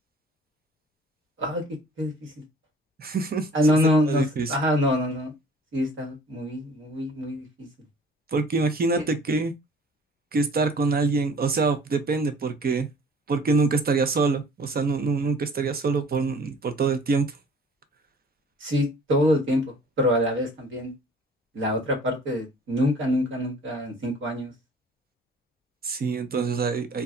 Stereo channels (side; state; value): both; normal; correlation 0.51